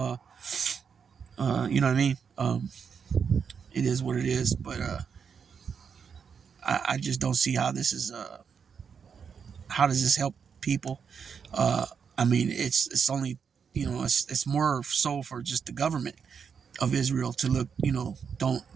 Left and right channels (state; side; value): quieter; left; 6.6 dB